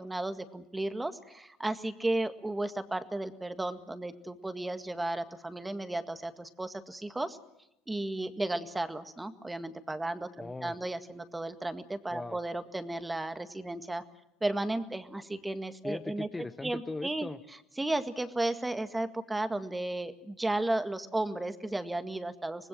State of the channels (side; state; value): both; normal; correlation 0.97